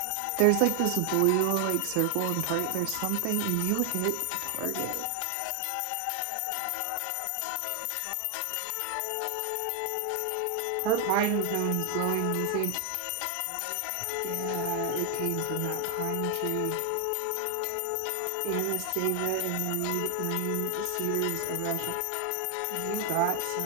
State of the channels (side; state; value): both; different; correlation 0.00